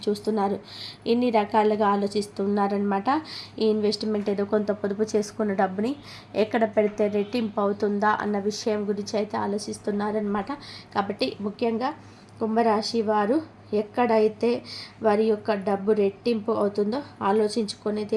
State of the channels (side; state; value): both; identical; correlation 1.00